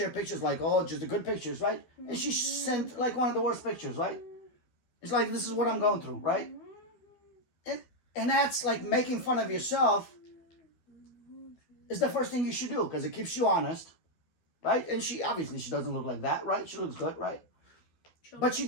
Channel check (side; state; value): right; late; 12 ms